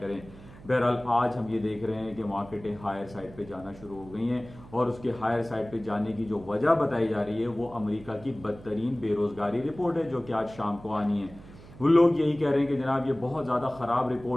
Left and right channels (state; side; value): noise; right; hum, 19 dB below the sound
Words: बहरहाल आज हम ये देख रहे हैं कि मार्केटें हायर साइड पे जाना शुरू हो गई हैं और उसके हायर साइड पे जाने की जो वजह बताई जा रही है वो अमेरिका की बदतरीन बेरोजगारी रिपोर्ट है जो कि आज शाम को आनी है। वो लोग यही कह रहे हैं कि जनाब ये बहुत ज़्यादा ख़राब